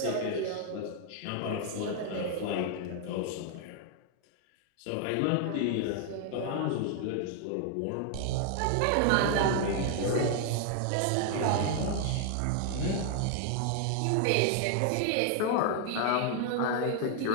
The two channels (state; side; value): different; both; correlation 0.00